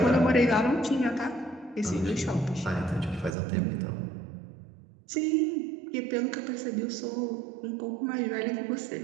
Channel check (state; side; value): drops out; left; at 3.4 s